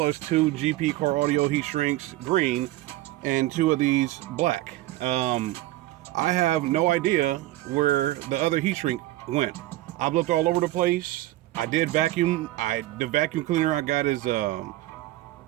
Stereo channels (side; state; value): left; quieter; 16.7 dB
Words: two GP car audio heat shrinks green and two of these black. I have no idea where the other heat shrink went. I've looked all over the place. I did vacuum. The vacuum cleaner I got is this